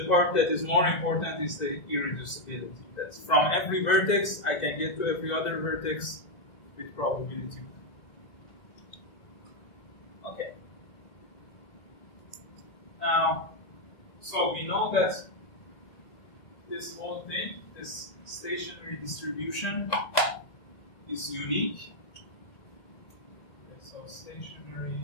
part that is more important is the irreducibility. That's from every vertex, I can get to every other vertex with probability 1. Okay. Now, so we know that this whole thing, this stationary distribution, is unique. Okay, so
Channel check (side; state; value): right; late; 1.7 ms